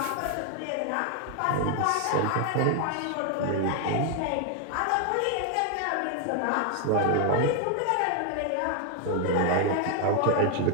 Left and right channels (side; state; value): both; different; correlation 0.00